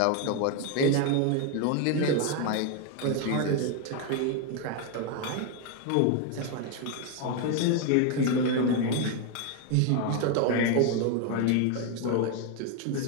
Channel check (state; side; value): different; both; correlation 0.01